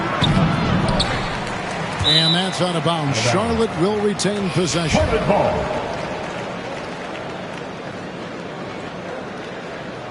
And that's out of bounds. Charlotte will retain possession.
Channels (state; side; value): identical; both; correlation 1.00